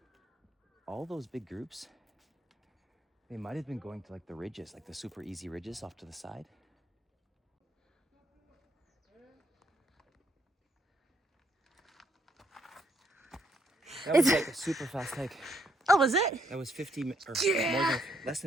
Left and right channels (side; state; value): both; normal; correlation 0.72